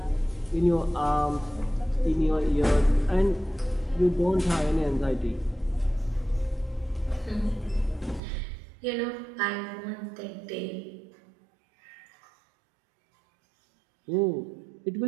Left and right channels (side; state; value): left; drops out; at 8.2 s